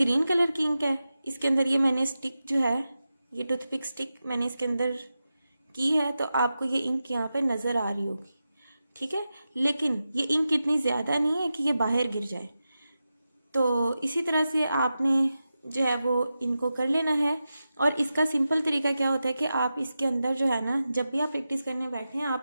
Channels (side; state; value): both; inverted; correlation -0.92